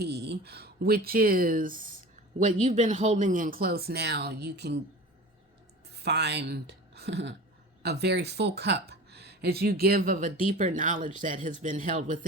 which is what you've been holding in close. Now you can find a very full cup as you give of a deeper knowledge that has been held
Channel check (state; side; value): normal; both; correlation 0.36